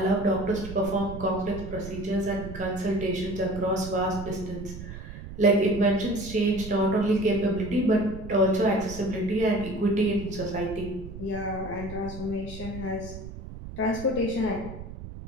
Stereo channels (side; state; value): right; noise; rumble, 11 dB below the sound